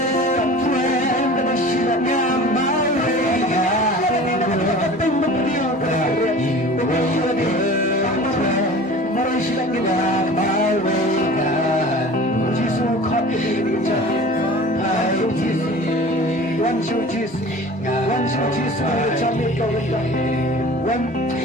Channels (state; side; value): normal; both; correlation 0.41